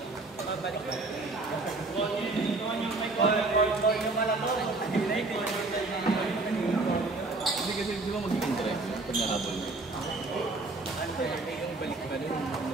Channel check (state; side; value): quieter; left; 3.3 dB